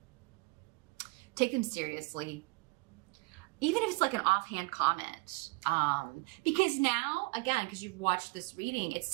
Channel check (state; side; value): quieter; left; 26.5 dB